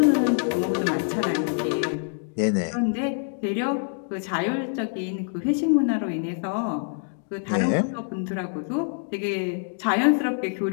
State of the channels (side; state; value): right; silent; 61 dB below the other